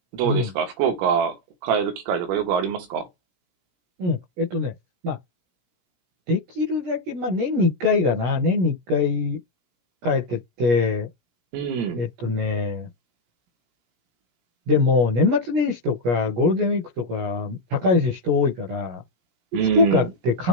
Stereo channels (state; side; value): late; left; 17 ms